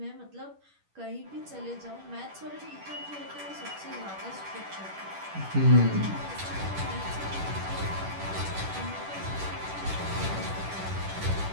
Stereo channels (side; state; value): left; late; 10 ms